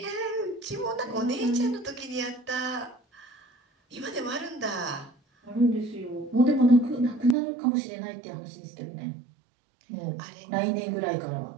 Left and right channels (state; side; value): drops out; left; at 7.4 s